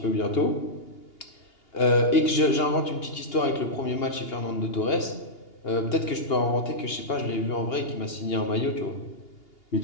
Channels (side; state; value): right; late; 2.8 ms